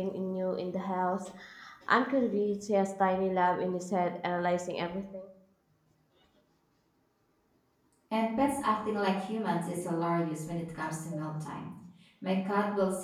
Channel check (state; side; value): identical; both; correlation 1.00